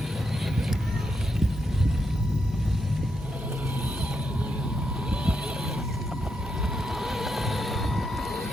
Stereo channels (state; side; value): normal; both; correlation 0.82